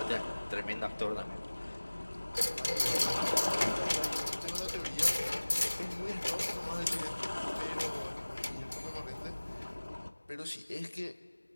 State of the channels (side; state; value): both; inverted; correlation -1.00